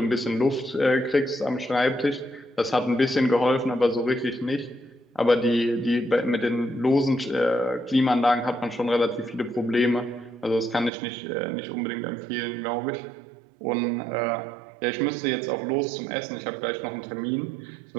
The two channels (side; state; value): left; drops out; at 10.9 s